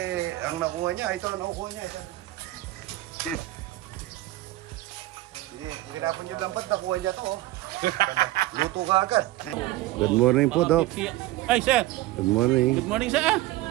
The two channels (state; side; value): quieter; left; 17.1 dB